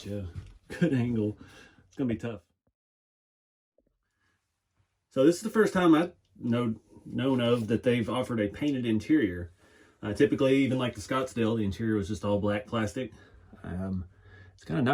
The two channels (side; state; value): both; identical; correlation 1.00